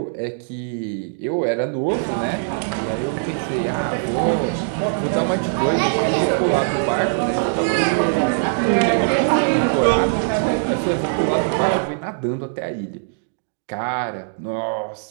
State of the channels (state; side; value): silent; left; digital silence